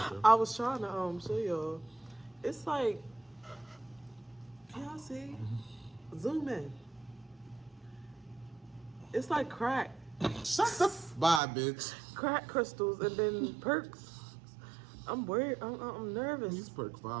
I was trying to show y'all. It's like, can y'all see? Zoom in. It's like crack. Shut the bye, bitch. Crack crystals and then perks. I'm worried. I'm nervous. These perk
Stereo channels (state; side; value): drops out; left; at 11.4 s